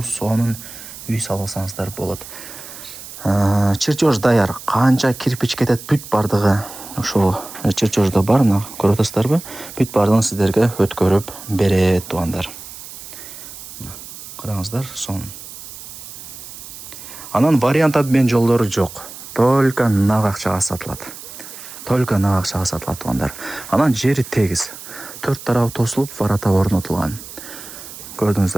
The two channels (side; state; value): right; noise; hiss, 14 dB below the sound